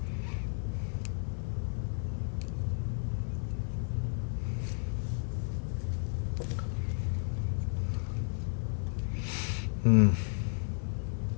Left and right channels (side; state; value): right; silent; 56 dB below the other